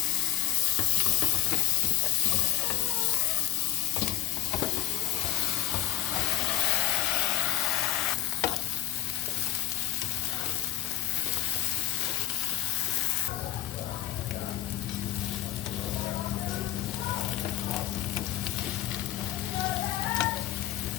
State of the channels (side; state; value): right; quieter; 15.9 dB